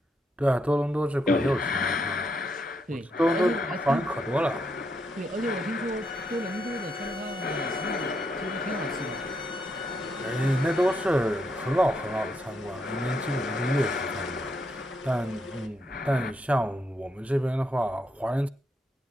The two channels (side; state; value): both; normal; correlation 0.79